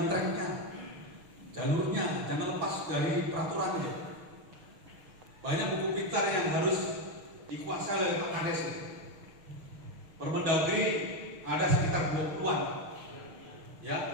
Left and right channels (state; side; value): late; left; 6.0 ms